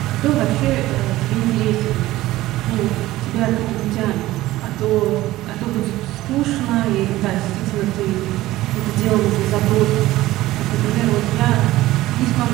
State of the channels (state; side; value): quieter; left; 16.6 dB